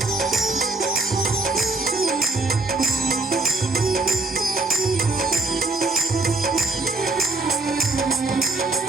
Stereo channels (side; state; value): left; quieter; 3.3 dB